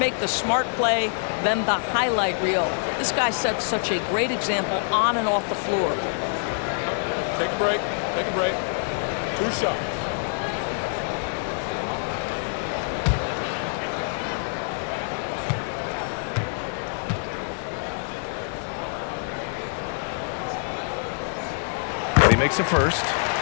the smart play than the highlight reel. This guy sets such a great example on and off the floor. Take a break. Take a break. 2 shots. And he makes a first.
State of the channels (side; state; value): right; silent; digital silence